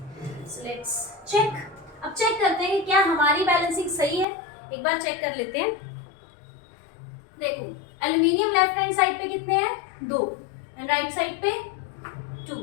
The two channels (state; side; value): drops out; right; at 4.2 s